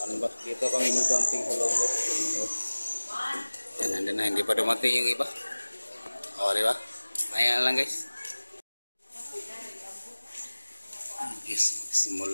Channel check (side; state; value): both; inverted; correlation -1.00